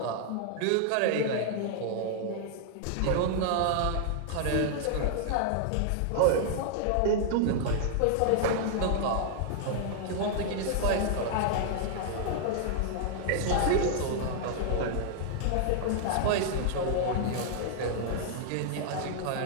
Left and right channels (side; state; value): both; different; correlation -0.01